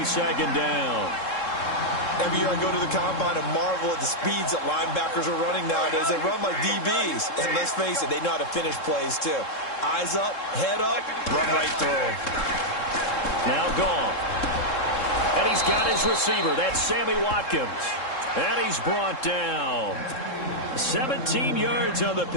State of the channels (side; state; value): right; late; 3.7 ms